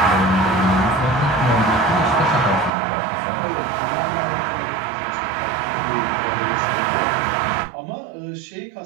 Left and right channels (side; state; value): left; drops out; at 2.7 s